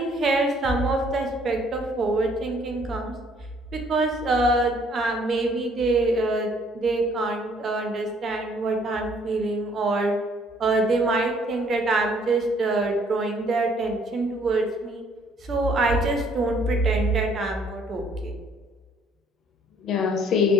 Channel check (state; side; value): normal; both; correlation 0.62